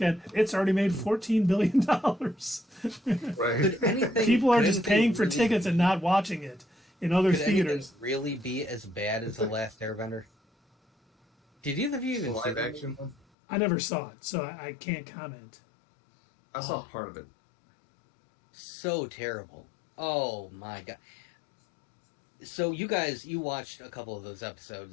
it's already made $14 billion. Right. People are just paying for tickets and not watching it in other theaters. Could really be as bad as The Last Airbender? Did either of you even see live action one? I never saw it, so I can't comment. I saw part of it. So terrible. Oh my God. So you watched a couple of those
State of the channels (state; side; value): drops out; right; at 13.2 s